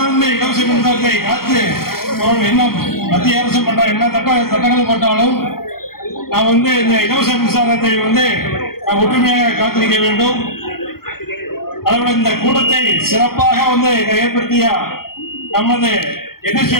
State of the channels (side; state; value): right; late; 0.94 ms